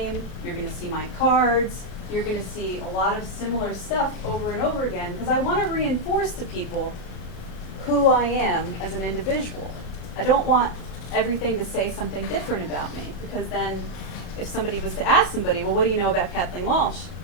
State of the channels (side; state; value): right; late; 36 ms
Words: you're going to see my cards, you're going to see a lot of similar stuff over and over again because I want to reinforce to people who I am as an individual. I don't want everything to say something different about me because then if somebody was to ask somebody, well, what do you know about Kathleen Walsh?